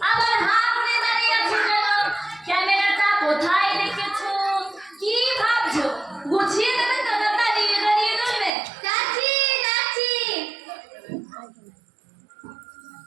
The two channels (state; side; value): drops out; left; at 8.5 s